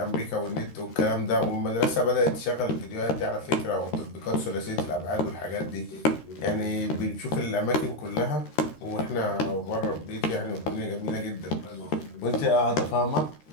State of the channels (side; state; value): right; late; 13 ms